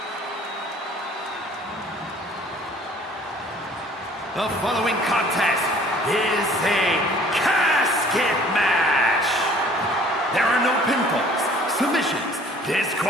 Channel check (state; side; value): normal; both; correlation 0.53